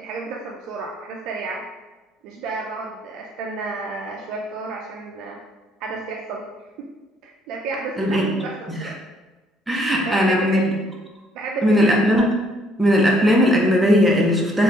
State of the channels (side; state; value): both; normal; correlation 0.66